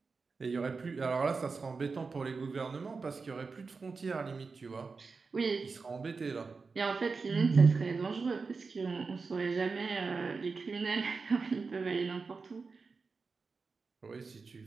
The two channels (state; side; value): quieter; left; 4.5 dB